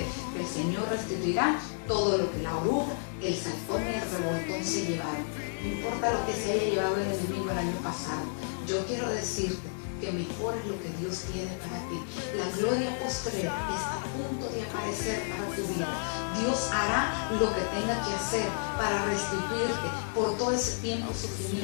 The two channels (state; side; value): silent; right; digital silence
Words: que el Señor restituirá todo lo que la oruga, el salfón y el revoltón se llevaron. No importa lo que se haya llevado el enemigo el año pasado, yo quiero decirte que mejor es lo que Dios tiene para ti. La gloria postrera está a punto de aparecer para tu vida. Dios hará lo que tenga que hacer para restituirte por todo ese tiempo de